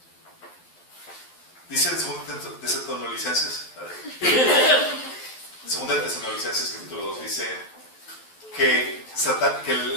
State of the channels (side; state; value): right; late; 12 ms